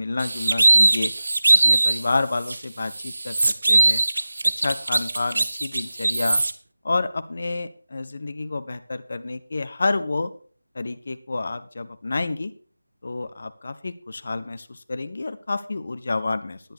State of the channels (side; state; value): both; inverted; correlation -0.96